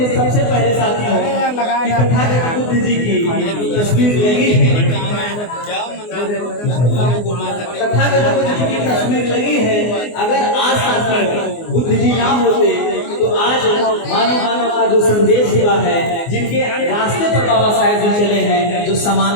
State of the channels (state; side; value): late; right; 24 ms